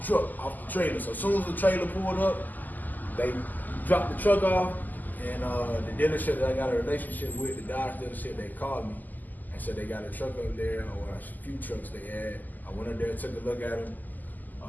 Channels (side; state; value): right; late; 0.084 ms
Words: truck, off the trailer. So as soon as the trailer pulled up, they dropped the truck off, and the dealership that I got a relationship with, the Dodge dealership, they called me and said they got a truck up there, or a few trucks they had. I went up there, took a look at them.